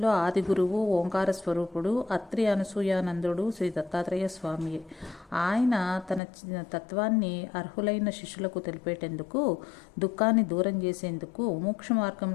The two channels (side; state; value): right; drops out; at 6.2 s